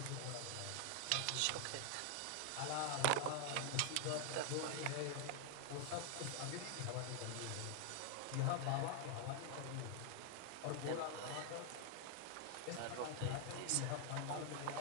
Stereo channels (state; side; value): different; both; correlation 0.00